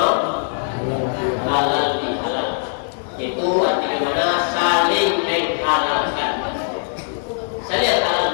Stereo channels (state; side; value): silent; right; digital silence